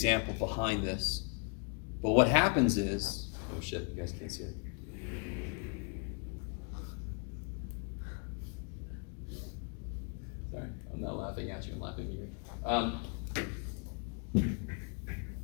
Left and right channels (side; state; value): right; quieter; 38.1 dB